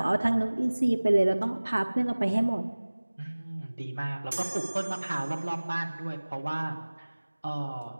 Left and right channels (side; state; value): both; inverted; correlation -1.00